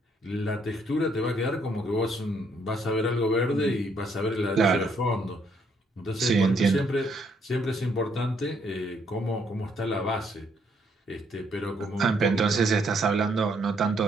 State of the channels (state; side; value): normal; both; correlation 0.70